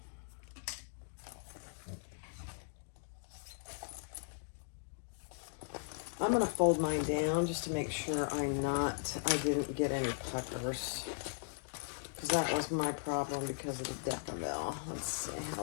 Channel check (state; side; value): silent; right; digital silence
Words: I'm gonna fold mine down just to make sure I didn't get any puckers. Because that was my problem because of the Decibel. Let's see